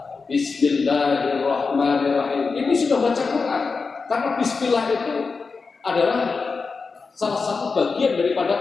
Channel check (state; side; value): quieter; right; 4.6 dB